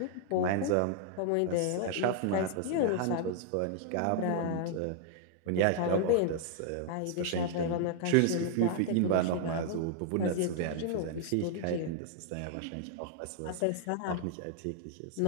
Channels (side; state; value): both; different; correlation 0.00